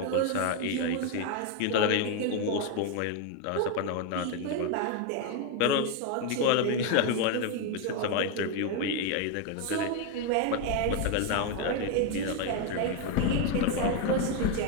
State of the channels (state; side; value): different; both; correlation 0.01